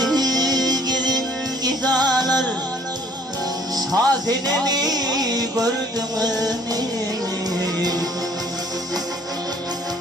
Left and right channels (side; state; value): both; normal; correlation 0.58